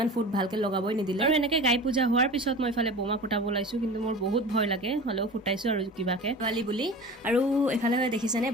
ফুট ভালকে লগাবই নিদিলে আৰু এনেকে গাই পূজা হোৱাৰ পিছত মই ইফালে বোমা ফুটাব লাইছো কিন্তু মোৰ বহুত ভয় লাগে হলেও ফুটাইছো আৰু কিবাকে পোৱালি বুলি আৰু এফালে দেখিছেনে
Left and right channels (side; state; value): both; normal; correlation 0.35